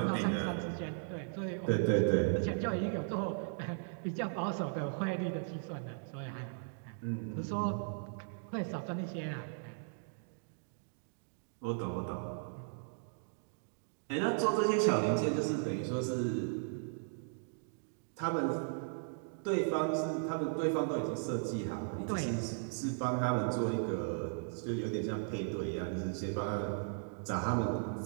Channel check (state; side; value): silent; left; digital silence